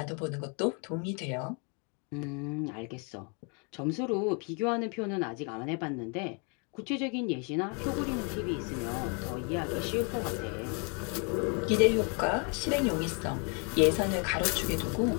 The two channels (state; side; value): quieter; right; 35.9 dB